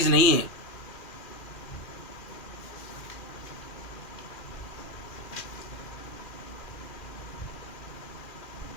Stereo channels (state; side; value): late; right; 2.4 ms